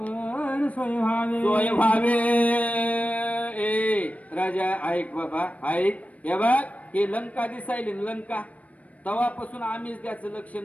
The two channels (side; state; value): right; late; 0.067 ms